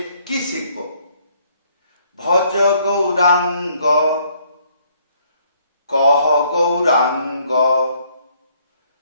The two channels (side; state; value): both; inverted; correlation -0.66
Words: কি শিখব? ভজ গৌরাঙ্গ কহ গৌরাঙ্গ